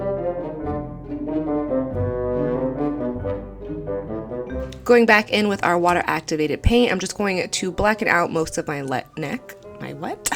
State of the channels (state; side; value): identical; both; correlation 1.00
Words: Going back in with our water activated paint, I'm just going to blacken out most of my neck.